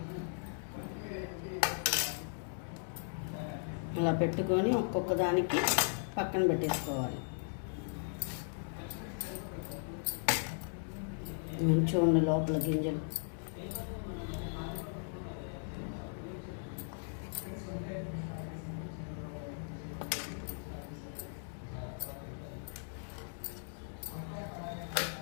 ఇలా పెట్టుకొని ఒక్కొక్క దానికి పక్కన పెట్టేసుకోవాలి. మంచిగా ఉండే లోపల గింజలు.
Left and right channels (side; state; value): right; silent; digital silence